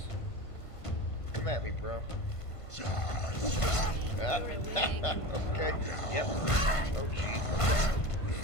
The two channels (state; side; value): late; right; 1.5 ms